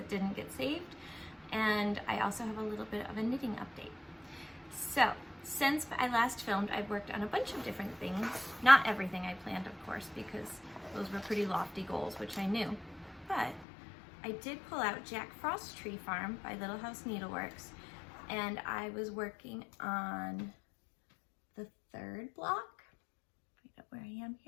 didn't get saved. And I also have a little bit of a knitting update. So, since I last filmed, I've worked on a bunch of different things. Not everything I planned, of course, because those were pretty lofty goals, which I knew. But I did pull out Jack Frost's Tree Farm by Little House Needleworks, and I was working on the third block, find out where I am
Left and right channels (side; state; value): right; drops out; at 13.7 s